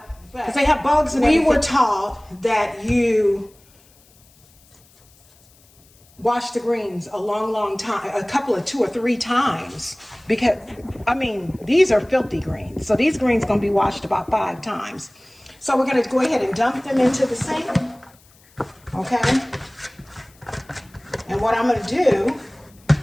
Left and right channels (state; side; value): noise; left; hiss, 29 dB below the sound